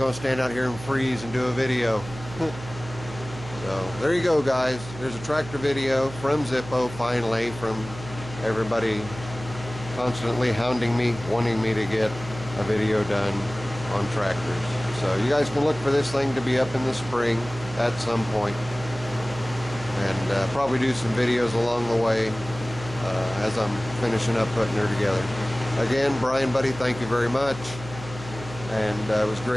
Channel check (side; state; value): right; noise; hum, 13 dB below the sound